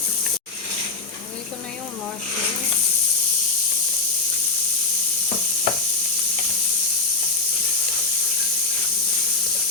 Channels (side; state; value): right; quieter; 4.3 dB